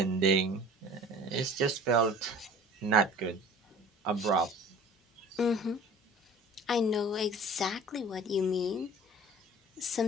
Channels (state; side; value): normal; both; correlation 0.43